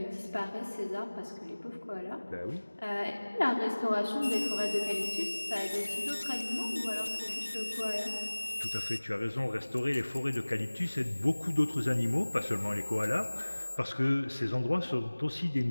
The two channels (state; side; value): inverted; both; correlation -1.00